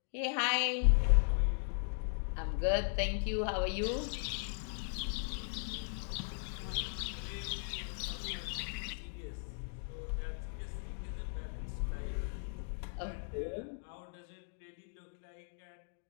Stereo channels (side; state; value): right; silent; digital silence